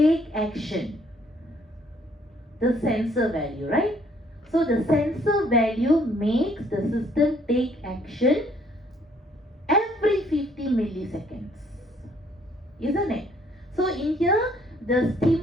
action? The sensor value, right? So the sensor value makes the system take action every 50 milliseconds, isn't it? So in here, the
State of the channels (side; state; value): both; normal; correlation 0.64